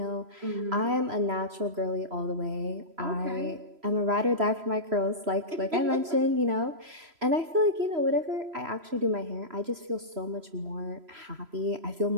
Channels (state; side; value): late; left; 3.0 ms